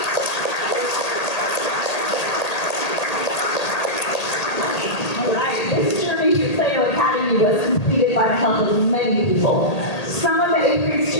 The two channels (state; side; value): late; right; 1.8 ms